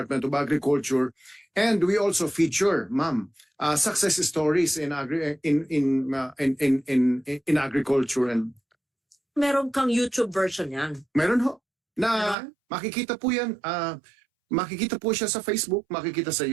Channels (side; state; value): left; drops out; at 12.4 s